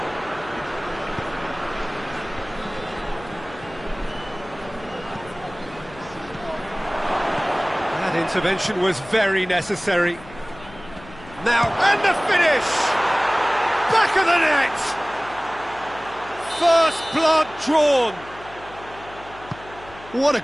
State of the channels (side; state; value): left; noise; hum, 19 dB below the sound